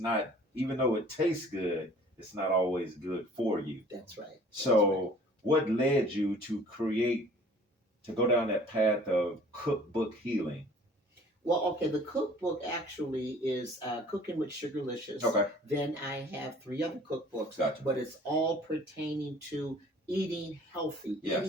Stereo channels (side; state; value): both; normal; correlation 0.51